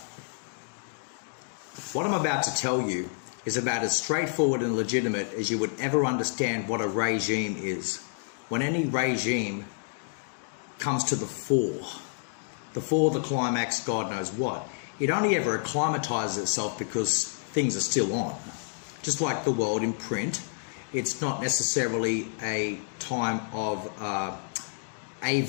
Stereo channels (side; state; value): right; silent; digital silence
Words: what I'm about to tell you is about as straightforward and legitimate as you would ever understand what a regime is. When any regime comes to the fore, the climax, God knows what, it only ever acclimatizes itself because things are still on. Just like the world in print, it's not necessarily a time of